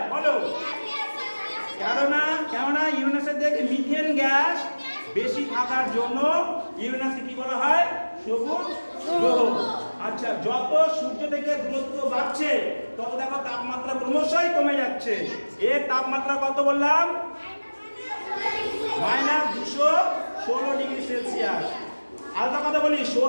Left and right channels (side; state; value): both; inverted; correlation -1.00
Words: বলো। কেননা ইউরেনাসের দেখে মিথেন গ্যাস বেশি থাকার জন্য ইউরেনাসকে কি বলা হয়? সবুজ গ্রহ। আচ্ছা, যত সূর্য থেকে দূরত্ব বাড়ছে তত দেখো তাপমাত্রা ক্রমশই কমে যাচ্ছে। এর তাপমাত্রা কত বললাম? -216 ডিগ্রি সেলসিয়াস। আলাদা কথা বলি,